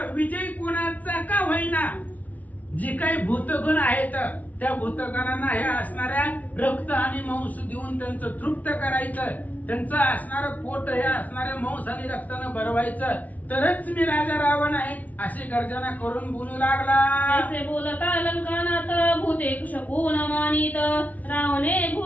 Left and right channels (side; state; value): right; late; 0.074 ms